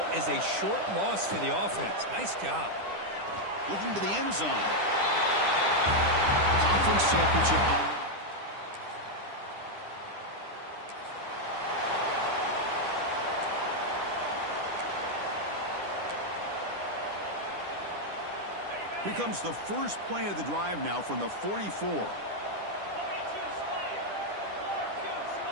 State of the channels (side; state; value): left; late; 10 ms